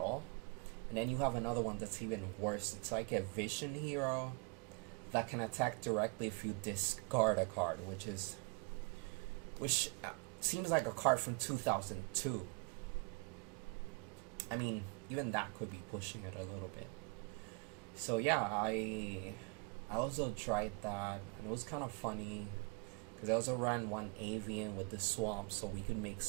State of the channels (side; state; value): left; quieter; 31.8 dB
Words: and then you have another one that's even worse. It's like a Vision Hero that can attack directly if you discard a card, which seems like a card from 2002. I mean, even that could be pushing it a little bit. So yeah, I also tried that, and it was kind of funny, because I also ran one Avian with the Swamp so we could make